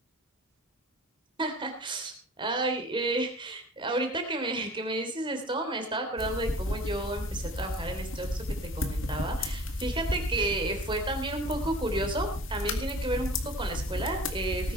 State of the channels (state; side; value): normal; both; correlation 0.44